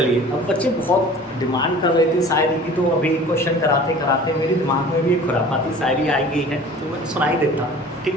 अब बच्चे बहुत डिमांड कर रहे थे शायरी की, तो अभी क्वेश्चन कराते कराते मेरे दिमाग में भी एक खुरापाती शायरी आई गई है, तो मैं सुनाई देता हूँ। ठीक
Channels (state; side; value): normal; both; correlation 0.44